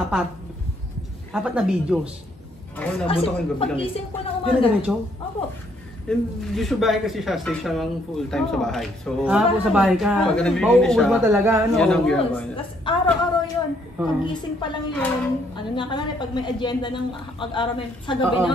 apat na videos? Ako, nabuto ko yung gabi lang. Pag-gising ko ng Yun na umaga. ganito? Opo. Usually bahay kasi siya, stay siya lang full time sa bahay. So, Po sa bahay ka. Pag nabibili Mauubos siya, mo talaga, ano? yan ang Yes. ginagawa niya. Tapos araw-araw yun. Pag-gising pa lang yun. Ano na ka na, pag may agenda ng pag-araw na sa gabi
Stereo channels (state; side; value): normal; both; correlation 0.68